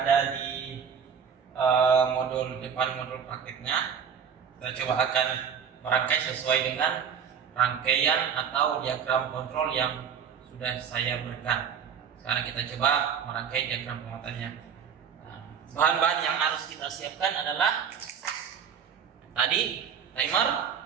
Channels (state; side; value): quieter; left; 7.4 dB